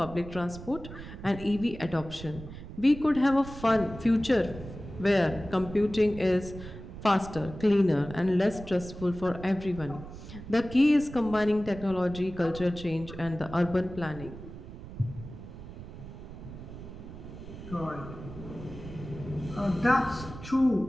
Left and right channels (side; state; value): right; noise; rumble, 13 dB below the sound